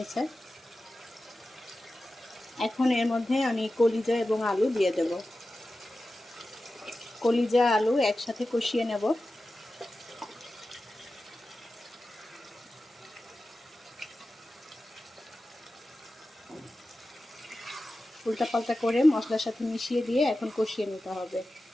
এখন এর মধ্যে আমি কলিজা এবং আলু দিয়ে দেব। কলিজা আলু একসাথে কষিয়ে নেব। উল্টাপাল্টা করে মশলার সাথে মিশিয়ে দিয়ে এখন কষিয়ে নিতে হবে।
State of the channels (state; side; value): normal; both; correlation 0.94